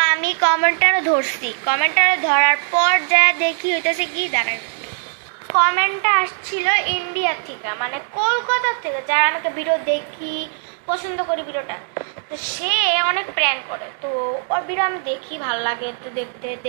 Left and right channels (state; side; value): silent; left; 66 dB below the other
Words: আমি কমেন্টারও ধরছি, কমেন্টারে ধরার পর যা দেখি হইতেছে কি দাঁড়ায়, কমেন্টটা আসছিল ইন্ডিয়া থেকে, মানে কলকাতা থেকে, যারা আমাকে ভিডিও দেখি পছন্দ করি ভিডিওটা। তো সে অনেক প্র্যাঙ্ক করে, তো ওর ভিডিও আমি দেখি, ভালো লাগে, তো